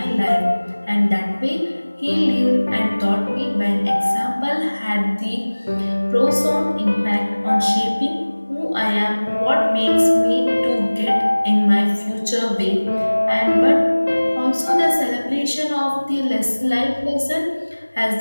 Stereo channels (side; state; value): both; inverted; correlation -1.00